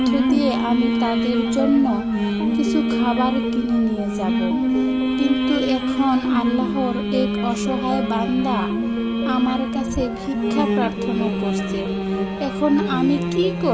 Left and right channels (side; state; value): both; identical; correlation 1.00